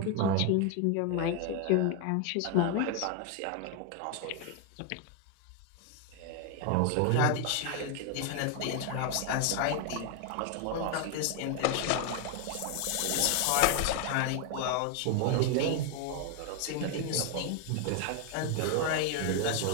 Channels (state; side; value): different; both; correlation 0.00